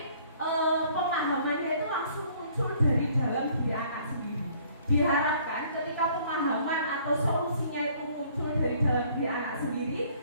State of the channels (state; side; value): inverted; both; correlation -0.59